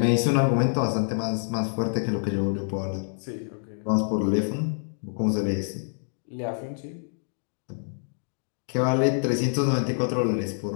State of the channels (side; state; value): right; silent; digital silence